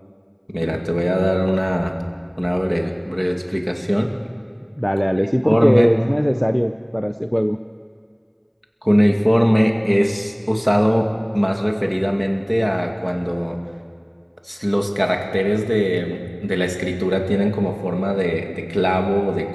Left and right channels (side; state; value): both; identical; correlation 1.00